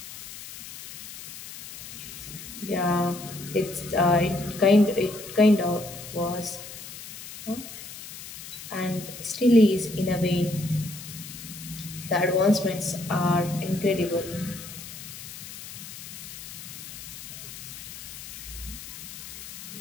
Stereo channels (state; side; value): noise; left; hiss, 12 dB below the sound